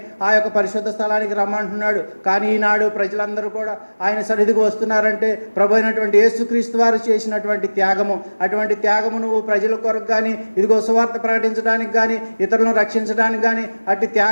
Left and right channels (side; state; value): both; inverted; correlation -1.00